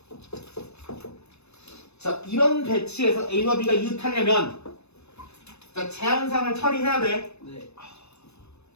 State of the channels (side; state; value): right; late; 0.80 ms